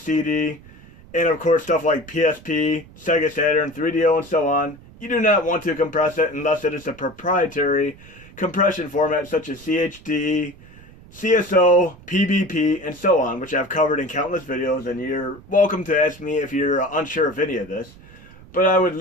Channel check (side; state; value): right; noise; rumble, 21 dB below the sound